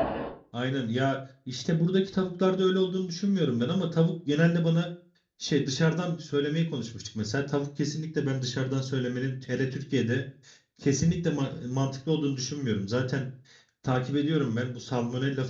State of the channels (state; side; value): identical; both; correlation 1.00